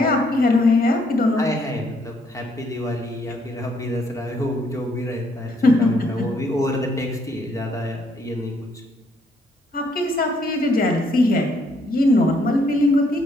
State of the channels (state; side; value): normal; both; correlation 0.69